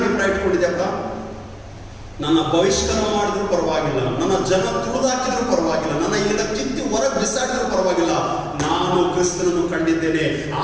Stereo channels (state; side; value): identical; both; correlation 1.00